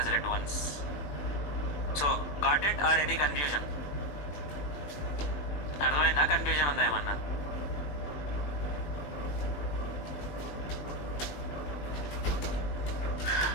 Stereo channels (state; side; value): late; right; 20 ms